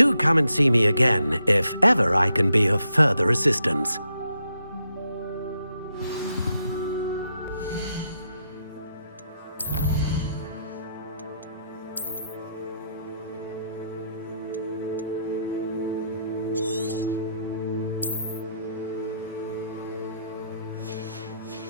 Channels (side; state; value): both; inverted; correlation -0.78